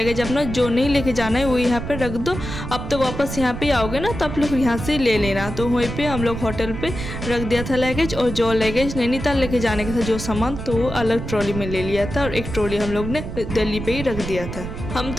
अपना जो नहीं लेके जाना है वो यहाँ पर रख दो, अब तो वापस यहाँ पर आओगे ना तो आप लोग यहाँ से ले लेना। तो वहीं पे हम लोग होटल पे रख दिया था लगेज और जो लगेज नैनीताल लेके जाने का था जो सामान तो वो अलग ट्रॉली में ले लिया था और एक ट्रॉली हम लोग ने दिल्ली पे ही रख दिया था। हम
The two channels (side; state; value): right; noise; rumble, 7 dB below the sound